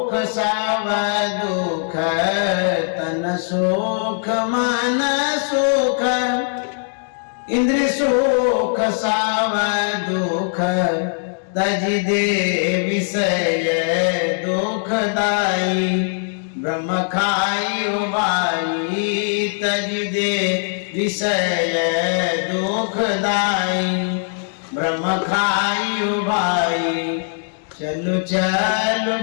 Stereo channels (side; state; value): right; silent; digital silence